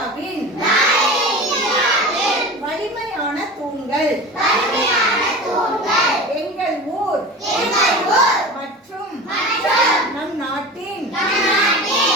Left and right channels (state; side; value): normal; both; correlation 0.33